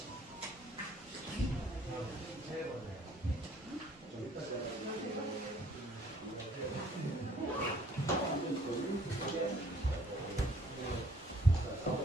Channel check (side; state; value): both; normal; correlation 0.60